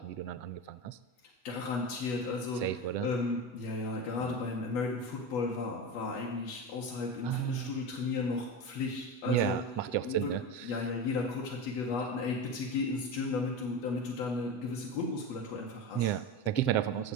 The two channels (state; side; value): late; right; 8.1 ms